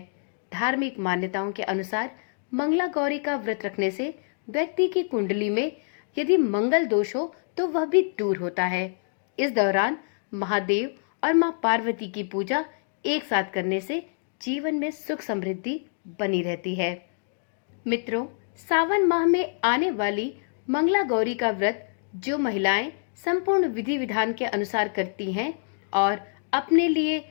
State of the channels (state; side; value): silent; right; digital silence